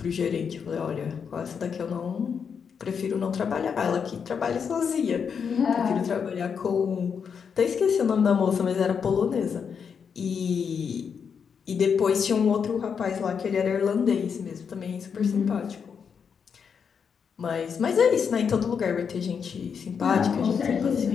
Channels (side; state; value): right; quieter; 6.6 dB